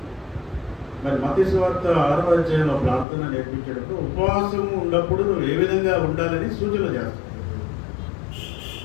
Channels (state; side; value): drops out; right; at 3.1 s